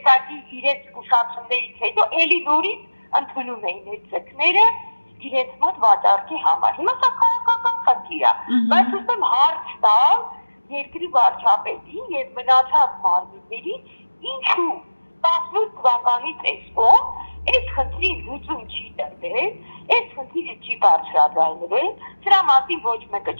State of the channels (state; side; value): inverted; both; correlation -1.00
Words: իրենց զգուշացումներից հետո էլի նորից ընդունում էին այդ ձկները իրենց մոտ վաճառքի համար։ Հիմա սա քաղաքական խնդիր է, բայց ուզում հարց տալ երկրի վարչապետին եւ մնացած մարմիններին, ինչու 18 թվականից այսօր այս խնդրի լուծում չի տրվել, այս խնդիրը չի բարձրաձայնվել, սրա մասին ոչ մեկը